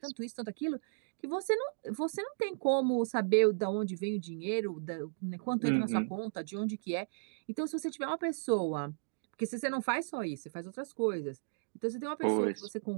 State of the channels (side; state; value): left; silent; digital silence